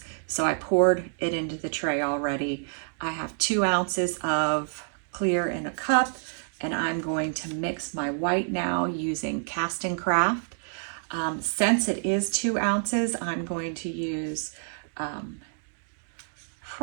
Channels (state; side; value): silent; left; digital silence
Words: So I poured it into the tray already. I have 2 ounces of clear in a cup, and I'm going to mix my white now using Cast and Craft. Since it is 2 ounces, I'm going to use